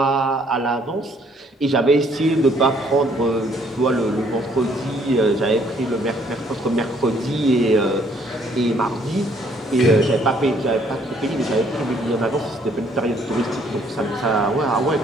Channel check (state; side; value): normal; both; correlation 0.64